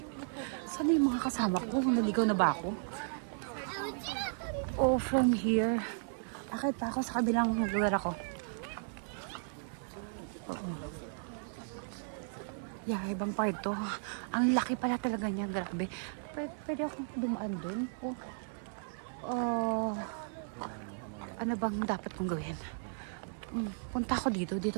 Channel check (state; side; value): silent; left; 54 dB below the other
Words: Saan yung mga kasama ko? Naligaw na ba ako? Oh, from here. Bakit pa ako sa kabilang lugar ako? Yeah, ibang part to. Ang laki pala talaga niya. Grabe. Pwede akong dumaan dun? Ano bang dapat kong gawin? Punta ako dito.